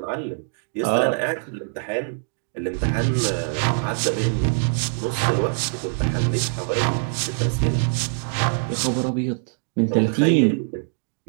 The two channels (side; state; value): left; silent; digital silence